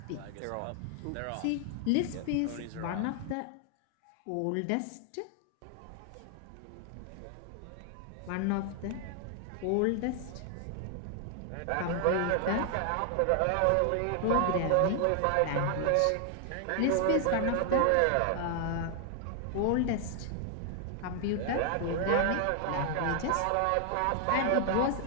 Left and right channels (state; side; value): different; both; correlation 0.00